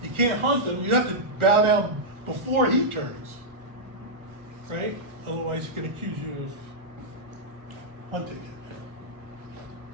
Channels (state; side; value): late; left; 1.4 ms